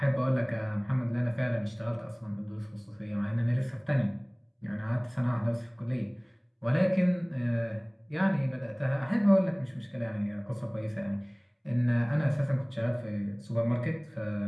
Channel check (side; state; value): both; identical; correlation 1.00